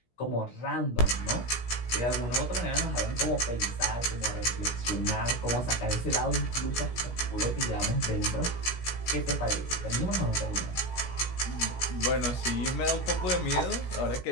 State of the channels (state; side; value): late; right; 17 ms